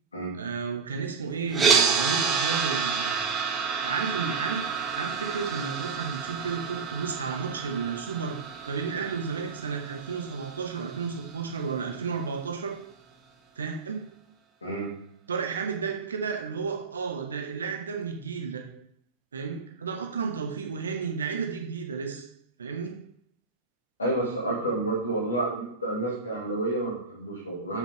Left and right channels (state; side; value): quieter; left; 4.8 dB